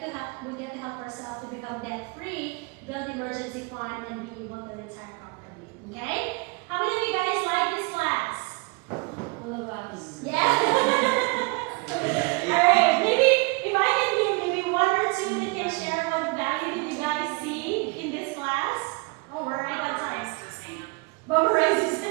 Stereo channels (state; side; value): quieter; left; 29.3 dB